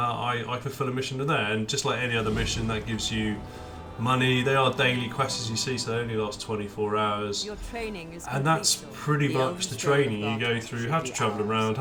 fulfill a mission in there, and just like any other mission, that gives you money. They are daily quests, as you see, so they only last 24 hours. Your training is and that's complete, pretty the much the training. You go through how to travel around,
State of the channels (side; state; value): both; identical; correlation 1.00